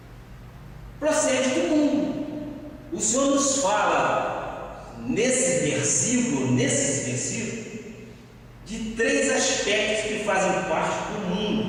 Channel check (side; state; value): both; identical; correlation 1.00